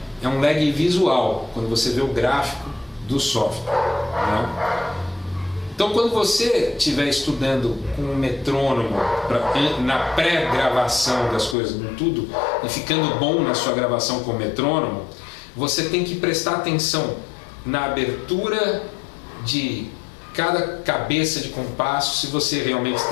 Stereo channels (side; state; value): right; drops out; at 11.6 s